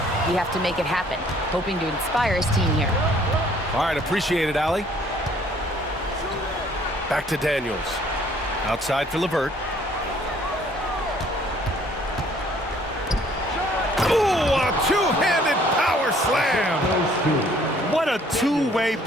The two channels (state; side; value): normal; both; correlation 0.60